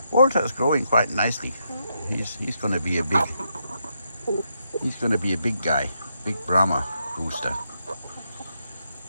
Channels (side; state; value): both; inverted; correlation -0.80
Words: Walter is growing quite nicely. He's going to be a big guy, big Brahma rooster.